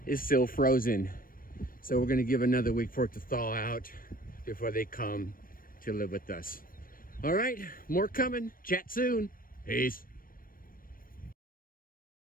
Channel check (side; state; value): right; late; 0.41 ms